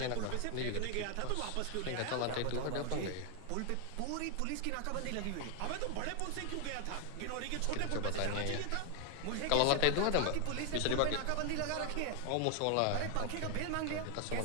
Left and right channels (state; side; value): different; both; correlation 0.00